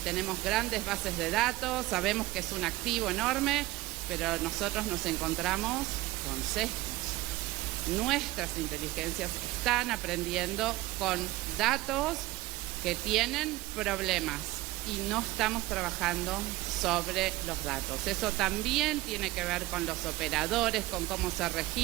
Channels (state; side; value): quieter; left; 19.1 dB